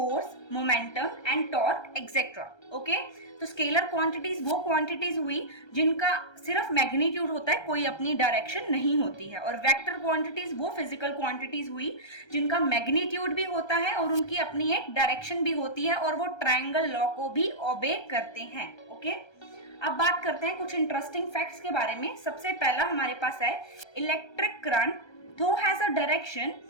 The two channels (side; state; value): right; late; 1.3 ms